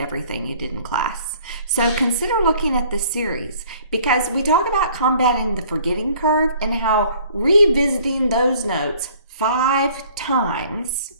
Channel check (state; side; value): inverted; both; correlation -0.55